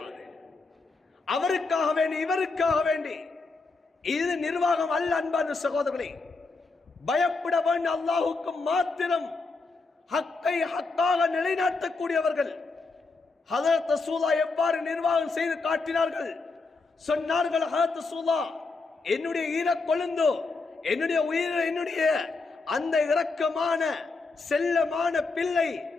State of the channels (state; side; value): quieter; right; 3.9 dB